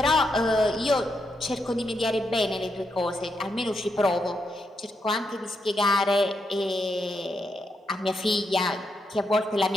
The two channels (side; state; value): both; normal; correlation 0.82